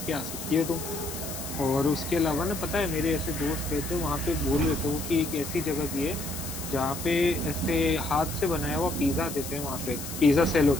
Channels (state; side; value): noise; left; hiss, 9 dB below the sound